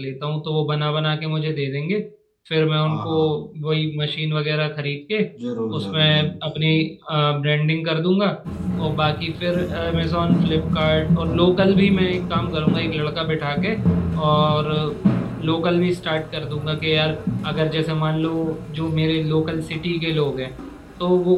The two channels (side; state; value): both; identical; correlation 1.00